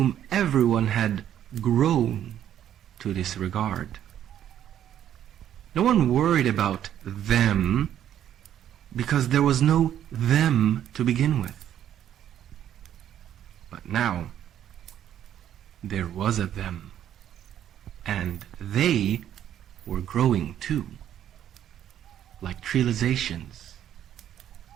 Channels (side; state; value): left; quieter; 10.7 dB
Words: everyone had grown to disregard. No one worried about them because there was no them to begin with. But now, there was a them, and they were growing too, like trializations,